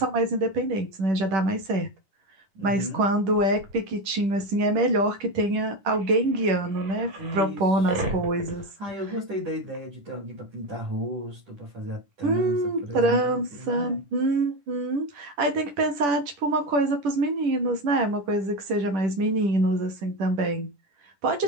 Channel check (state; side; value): late; left; 10 ms